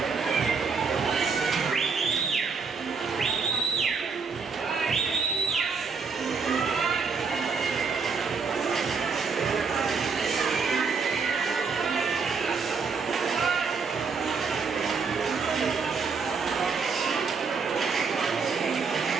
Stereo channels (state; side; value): quieter; left; 5.2 dB